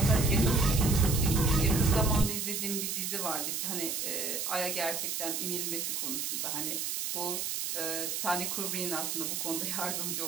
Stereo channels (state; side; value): noise; right; hiss, 2 dB below the sound